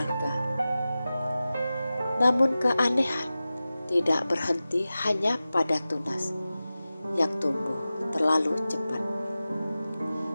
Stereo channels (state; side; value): inverted; both; correlation -0.95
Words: Namun keanehan tidak berhenti hanya pada tunas yang tumbuh terlalu cepat.